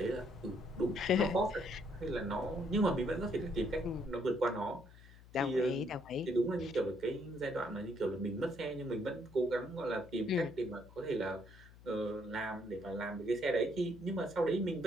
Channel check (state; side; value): noise; left; hum, 21 dB below the sound